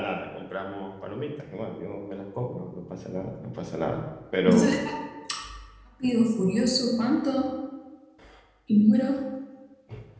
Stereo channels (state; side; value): identical; both; correlation 1.00